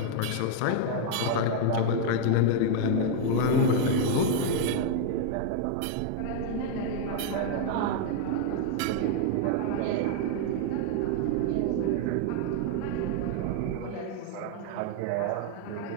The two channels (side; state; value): both; different; correlation 0.00